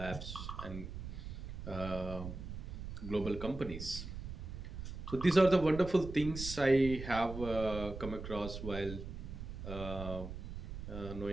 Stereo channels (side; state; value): right; noise; rumble, 8 dB below the sound